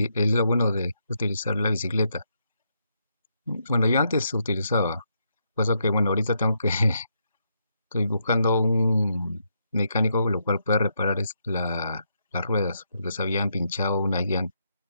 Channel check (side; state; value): both; inverted; correlation -0.78